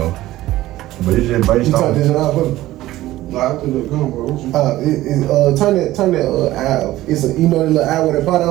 but it's just based on. You turn this out for me? No, I think they're gone, bro. Turn that eye off. It's a, you know, the little eye with a pot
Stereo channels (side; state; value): left; quieter; 15.9 dB